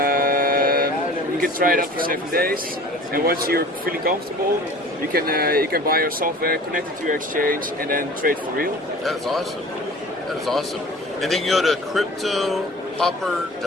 You can try it out for 7 days, and once you're feeling comfortable, you can buy our software, connect it to your exchange, and then trade for real. That is awesome. That is awesome. And then you go to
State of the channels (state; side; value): normal; both; correlation 0.43